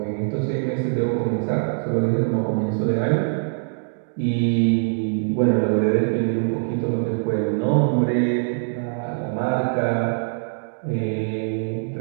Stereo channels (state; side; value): silent; left; digital silence